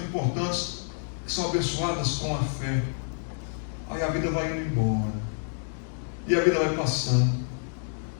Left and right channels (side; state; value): right; silent; digital silence